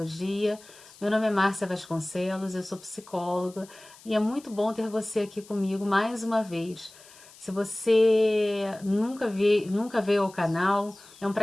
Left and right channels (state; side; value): noise; left; hiss, 23 dB below the sound